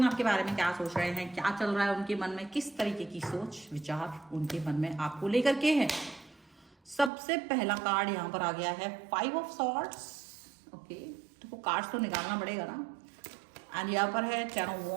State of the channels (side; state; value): left; drops out; at 7.1 s